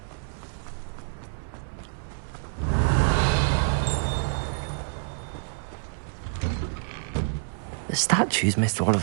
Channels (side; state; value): left; silent; digital silence